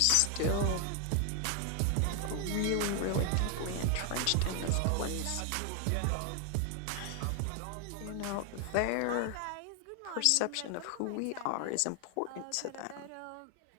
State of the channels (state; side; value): different; both; correlation 0.00